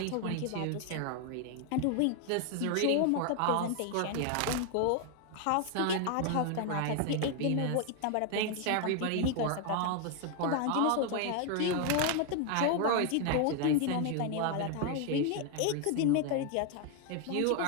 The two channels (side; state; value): both; different; correlation 0.01